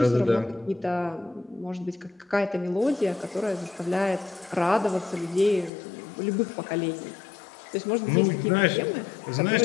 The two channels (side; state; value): right; drops out; at 5.7 s